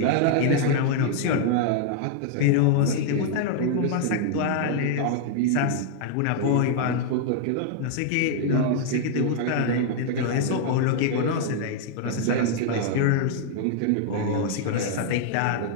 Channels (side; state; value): both; different; correlation -0.01